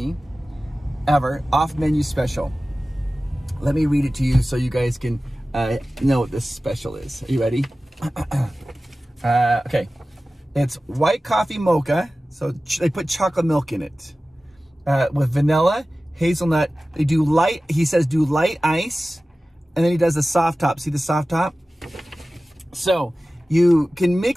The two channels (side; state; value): both; normal; correlation 0.96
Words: ever, off menu special. Let me read it to you so you guys can know what this special is. Are you ready? Okay. It's white coffee mocha. So they put chocolate milk in it with vanilla, hazelnut. They do light, he says do light ice. And then he does the soft top. See the soft top? So you can